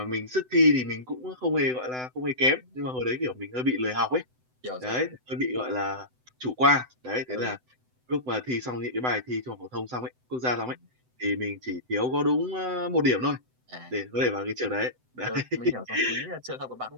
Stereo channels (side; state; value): left; late; 7.9 ms